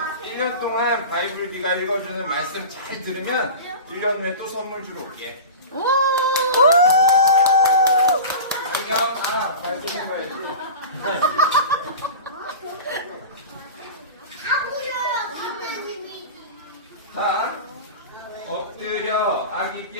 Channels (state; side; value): inverted; both; correlation -0.32